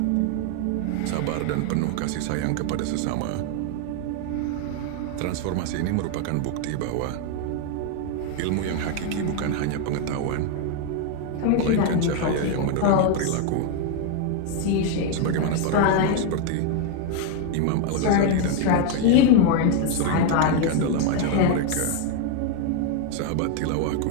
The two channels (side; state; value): both; different; correlation 0.01